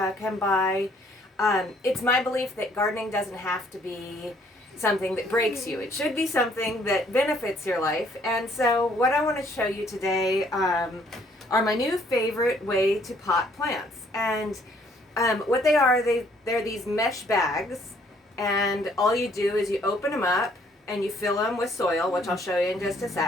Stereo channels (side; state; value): both; normal; correlation 0.63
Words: can buy. It's my belief that gardening doesn't have to be something that breaks you. It should be something that benefits your life. And so what I want to show you today are my new favorite way to pot plants. And what they are, they're these mesh bags, and all you do is you open them up and you fill them with soil, which I'll show you in just a